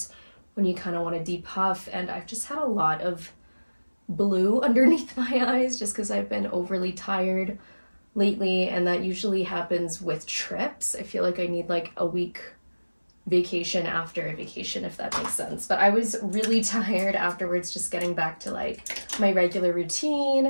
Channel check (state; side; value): inverted; both; correlation -1.00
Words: when you kind of want to depuff. And I've just had a lot of blue underneath my eyes just because I've been overly tired lately, and that usually happens with trips. I feel like I need like a week vacation after a vacation, if that makes sense. But I was really tired afterwards, just getting back to like my regular